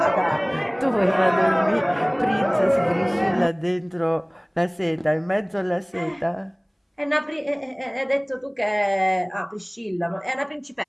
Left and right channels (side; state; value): both; identical; correlation 1.00